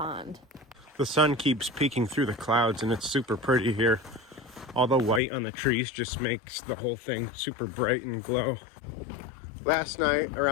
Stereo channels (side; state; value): right; drops out; at 5.2 s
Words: The sun keeps peeking through the clouds, and it's super pretty here. All the white on the trees just makes the whole thing super bright and glow. Last night,